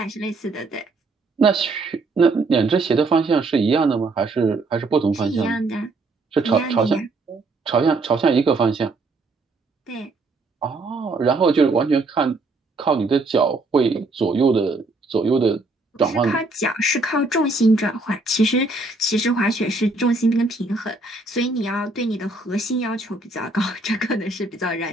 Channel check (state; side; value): quieter; left; 3.3 dB